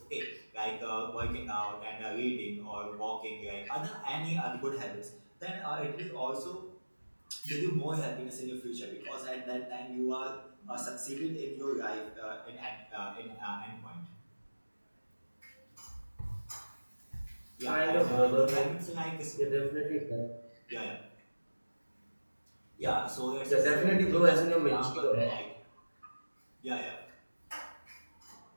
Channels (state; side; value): inverted; both; correlation -1.00